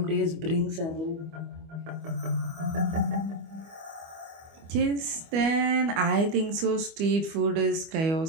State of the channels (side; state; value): left; late; 25 ms